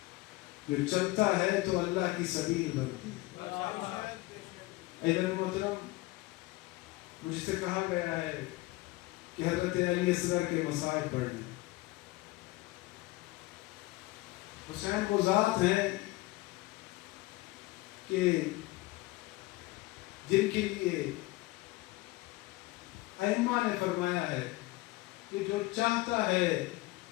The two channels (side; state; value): right; quieter; 20.4 dB